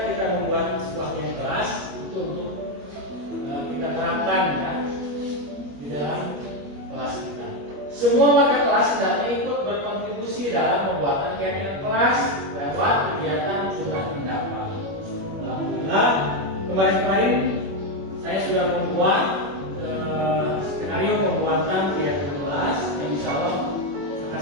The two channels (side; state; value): left; late; 21 ms